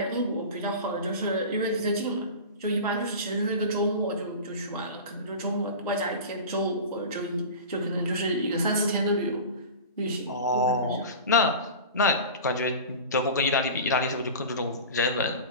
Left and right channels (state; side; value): inverted; both; correlation -0.32